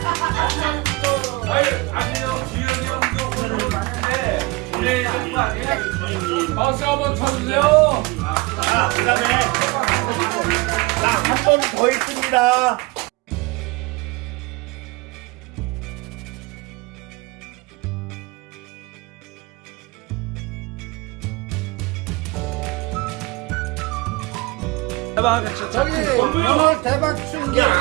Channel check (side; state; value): left; quieter; 23.6 dB